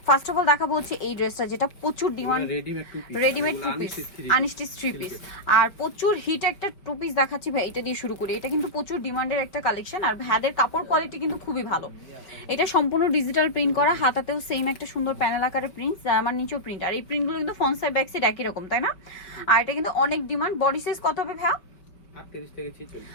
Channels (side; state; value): right; late; 4.9 ms